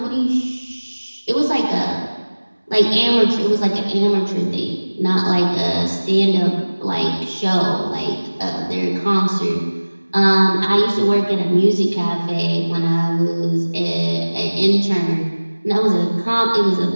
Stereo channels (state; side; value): inverted; both; correlation -1.00